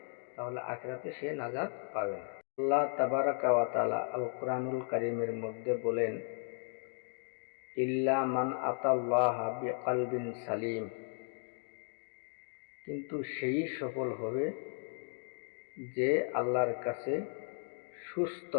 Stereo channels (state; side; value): silent; right; 54 dB below the other